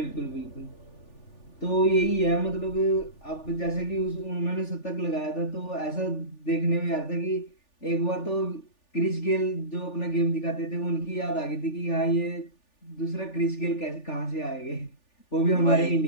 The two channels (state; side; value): late; right; 3.4 ms